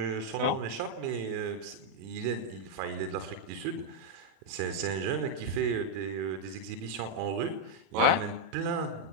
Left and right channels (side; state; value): left; late; 36 ms